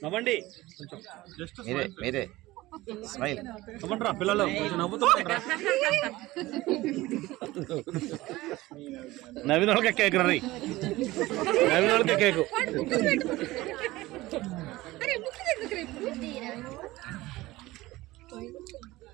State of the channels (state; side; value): quieter; left; 18.5 dB